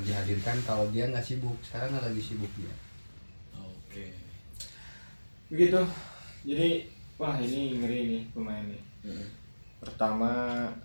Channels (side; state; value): both; inverted; correlation -1.00